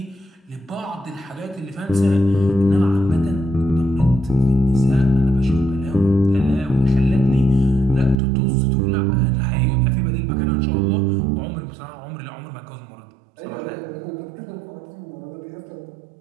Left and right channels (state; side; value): drops out; left; at 8.2 s